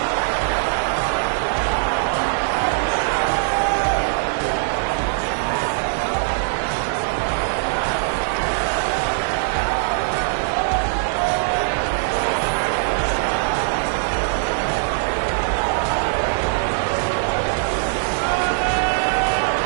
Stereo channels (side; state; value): left; silent; digital silence